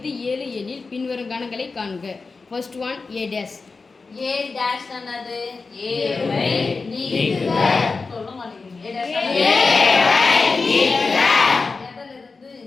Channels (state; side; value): quieter; right; 4.2 dB